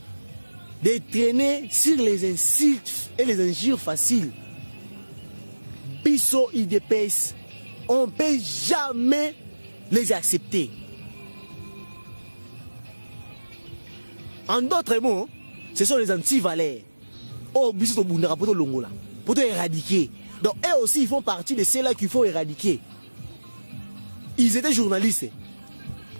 de traîner sur les insultes et les injures faciles. Bisso IDPS, on ne peut jamais les accepter. En d'autres mots, ce sont les anti-valeurs. Oh, Bisso Bundara pour l'Ongola, pour éradiquer. Donc, eux aussi, ils font partie de ceux-là qu'il faut éradiquer. Ils étaient journalistes.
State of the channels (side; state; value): both; inverted; correlation -1.00